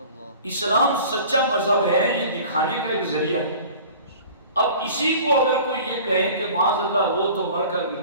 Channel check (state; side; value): inverted; both; correlation -0.43